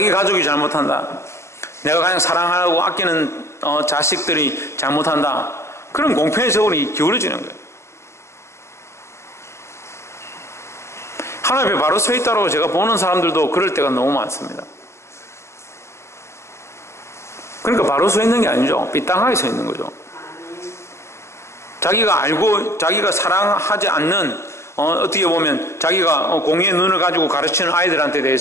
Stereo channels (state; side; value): late; right; 0.13 ms